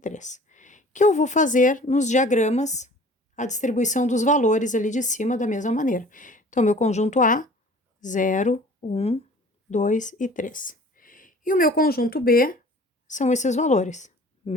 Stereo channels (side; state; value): both; normal; correlation 0.48